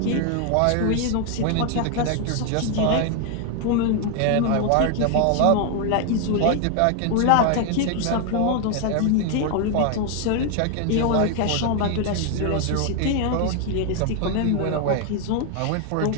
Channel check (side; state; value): both; different; correlation 0.00